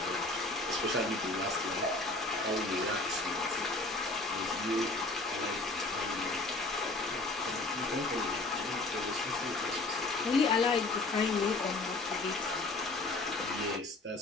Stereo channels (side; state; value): right; quieter; 3.1 dB